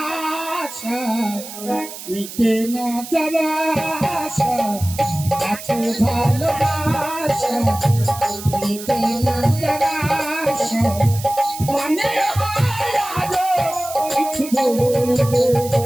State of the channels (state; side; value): noise; right; hiss, 12 dB below the sound